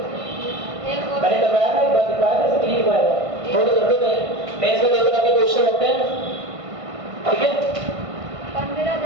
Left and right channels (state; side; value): late; left; 1.5 ms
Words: मैंने करवाया ना एक बार, दिखाया था सब यही हुआ थोड़ा कर दो नहीं। मेन से 2 तरह के क्वेश्चन होते हैं, ठीक है,